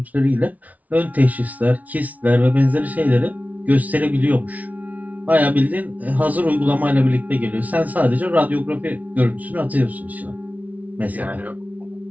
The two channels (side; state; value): left; late; 0.072 ms